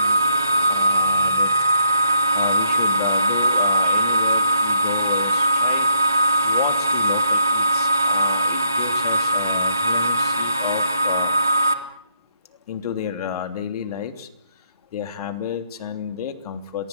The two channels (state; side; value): inverted; both; correlation -0.72